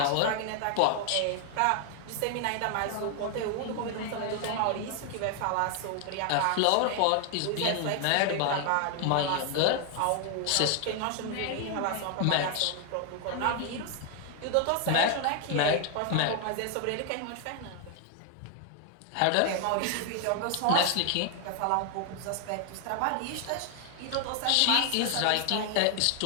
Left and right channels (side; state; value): both; different; correlation 0.00